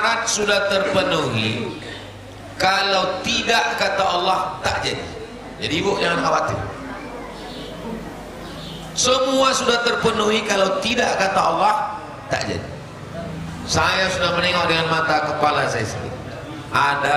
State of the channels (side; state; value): both; identical; correlation 1.00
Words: sudah terpenuhi. Kalau tidak, kata Allah, tak jadi. Jadi ibu jangan khawatir. Semua sudah terpenuhi, kalau tidak, kata Allah, tak jadi. Saya sudah menengok dengan mata kepala saya sendiri.